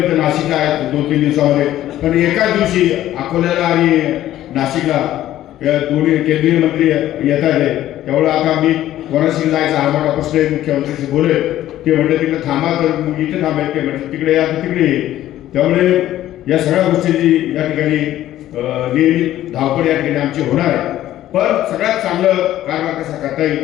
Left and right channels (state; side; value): quieter; right; 13.4 dB